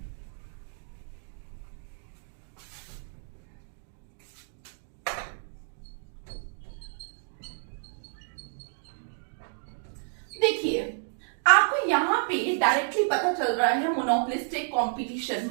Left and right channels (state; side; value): silent; left; digital silence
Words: देखिए, आपको यहाँ पे डायरेक्टली पता चल रहा है मोनोपोलिस्टिक कंपटीशन